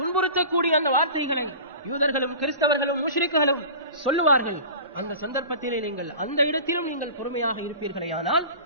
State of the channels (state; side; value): inverted; both; correlation -0.37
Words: அந்த வார்த்தைகளை யூதர்களும் கிறிஸ்தவர்களும் முஷ்ரிக்குகளும் சொல்லுவார்கள். அந்த சந்தர்ப்பத்திலே நீங்கள் அந்த இடத்திலும் நீங்கள் பொறுமையாக இருப்பீர்களே, ஆனால்